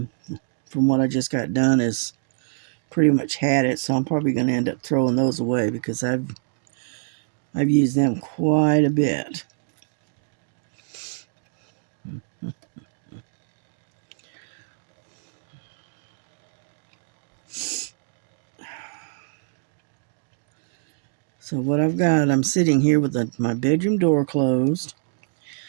what I just got done is pretty much had it, so I'm probably going to end up throwing those away because I've used them quite a bit. So what I've got, I'm sitting here with my bedroom door closed.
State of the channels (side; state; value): left; silent; digital silence